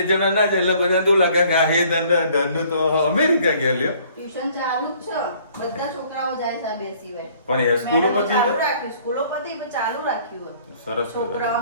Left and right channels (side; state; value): both; inverted; correlation -0.58